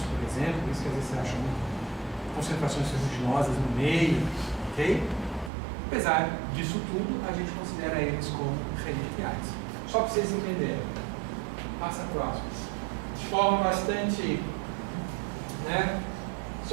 por exemplo, por isso que às vezes você acha concentrações ferruginosas no meio, ok? Apesar disso tudo, a gente considera eles como reliquiais. Só para vocês entenderem. Passa próximo. De forma bastante, né?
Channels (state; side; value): drops out; left; at 5.5 s